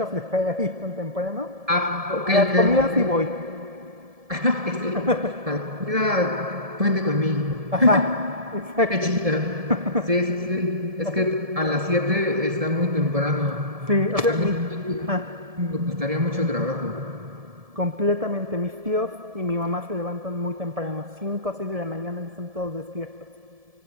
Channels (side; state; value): left; late; 1.7 ms